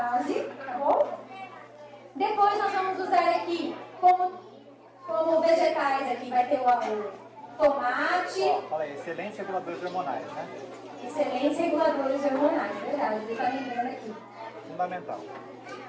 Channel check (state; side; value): identical; both; correlation 1.00